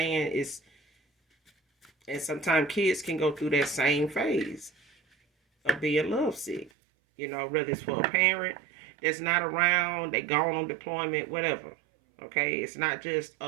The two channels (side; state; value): left; drops out; at 6.7 s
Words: And sometimes kids can go through that same phase of being lovesick. Whether it's for a parent that's not around, they gone on deployment, whatever. Okay, it's not just a